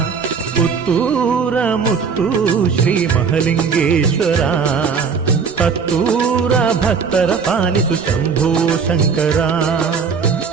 ಪುತ್ತೂರ ಮುತ್ತು ಶ್ರೀ ಮಹಲಿಂಗೇಶ್ವರ, ಹತ್ತೂರ ಭಕ್ತರ ಪಾಲಿಸು ಶಂಭೋ ಶಂಕರ.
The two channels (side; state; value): left; quieter; 5.8 dB